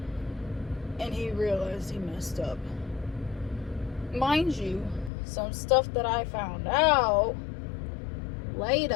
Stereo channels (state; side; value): drops out; right; at 5.1 s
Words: And he realized he messed up. Mind you, some stuff that I found out